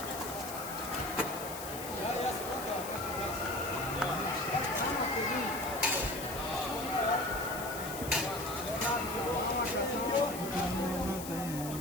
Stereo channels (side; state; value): left; noise; hiss, 9 dB below the sound